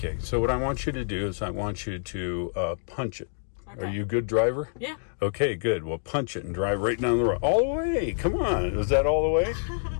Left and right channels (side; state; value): right; silent; digital silence